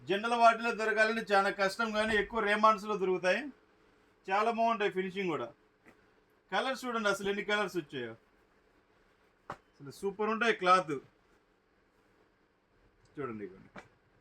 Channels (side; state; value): both; identical; correlation 1.00